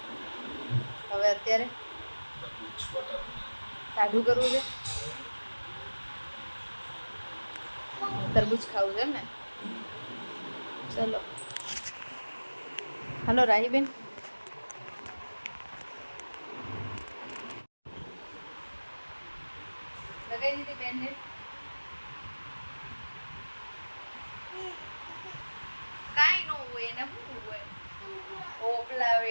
હવે અત્યારે ટાઢું કરવું છે. તરબૂચ ખાવું છે એમ ને? ચલો હલો રાહીબેન. લગાવી દીધી બેનને? કાંઈ ન હોય એને શું હોય? પોપલા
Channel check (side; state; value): both; inverted; correlation -1.00